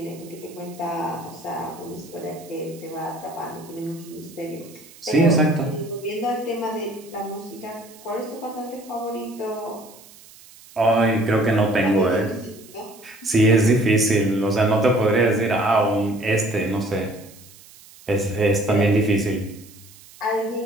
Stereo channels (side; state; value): right; noise; hiss, 22 dB below the sound